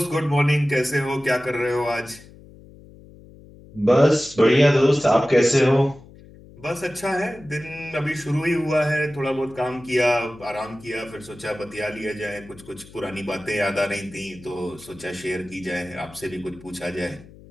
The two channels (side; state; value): left; noise; hum, 21 dB below the sound